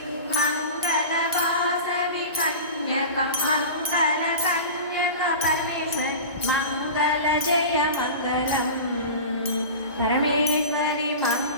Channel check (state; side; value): inverted; both; correlation -0.32